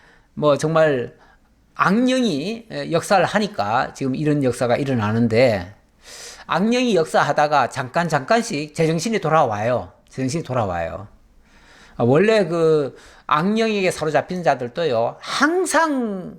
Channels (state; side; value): identical; both; correlation 1.00